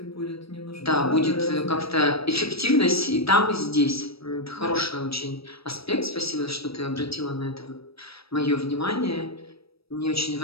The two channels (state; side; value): late; right; 0.77 ms